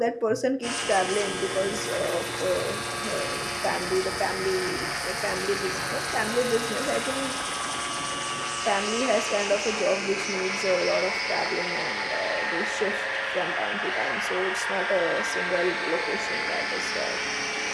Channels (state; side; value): identical; both; correlation 1.00